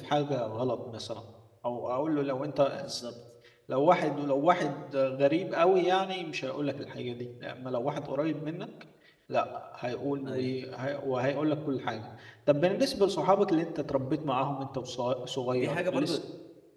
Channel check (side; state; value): both; identical; correlation 1.00